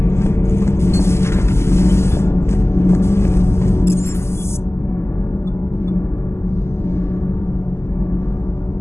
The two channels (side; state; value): right; late; 0.13 ms